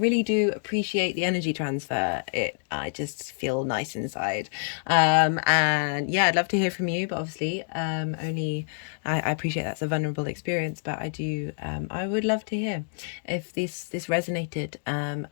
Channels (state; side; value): silent; right; digital silence